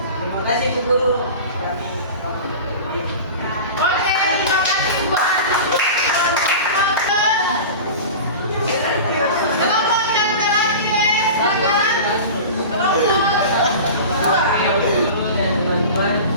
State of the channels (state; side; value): inverted; both; correlation -0.33